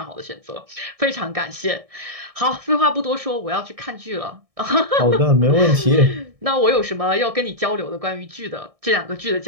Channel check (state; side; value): late; left; 1.6 ms